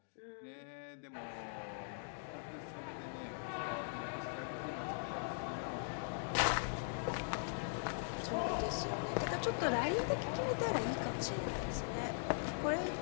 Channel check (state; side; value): silent; right; digital silence